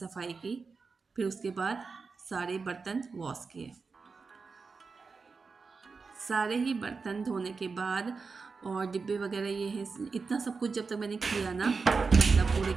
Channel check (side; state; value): left; quieter; 4.7 dB